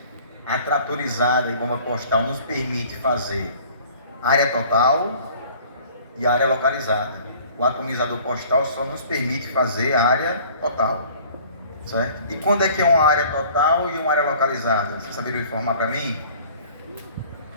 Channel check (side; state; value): both; inverted; correlation -0.50